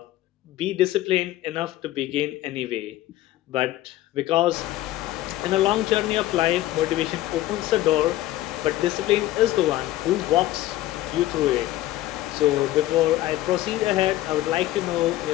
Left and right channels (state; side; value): quieter; right; 15.5 dB